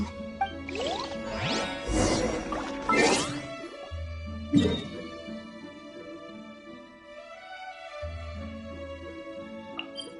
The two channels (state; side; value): identical; both; correlation 1.00